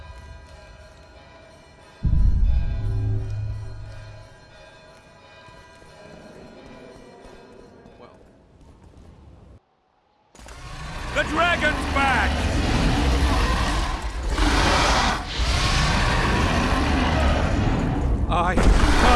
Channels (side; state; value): both; identical; correlation 1.00